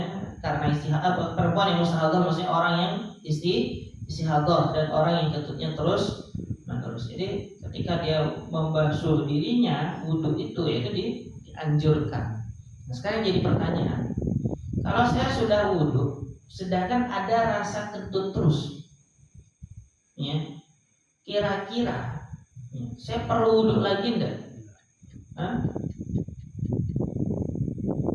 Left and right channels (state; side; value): identical; both; correlation 1.00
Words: karena istihadah, perempuan yang mustahadah maksudnya orang yang istihadah dan orang yang kentutnya terus menerus. Jadi ketika dia membasuh dirinya, wudhu itu yaitu dianjurkan. Nah, sekarang jadi pertanyaan, kalau saya sudah wudhu, sedangkan ada rasa kentut terus, ya, kira-kira ya, saya perlu wudhu lagi enggak?